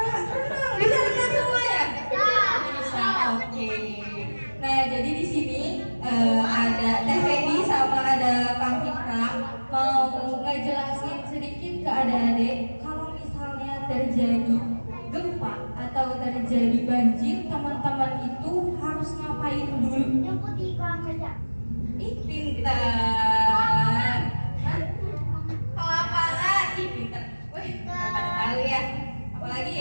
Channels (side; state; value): both; inverted; correlation -1.00